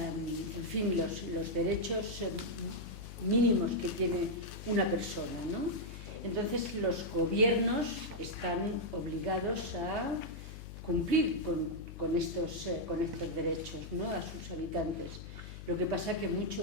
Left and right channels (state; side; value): noise; left; hum, 11 dB below the sound